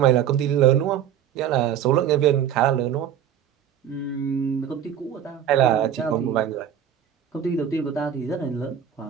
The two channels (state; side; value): quieter; left; 9.6 dB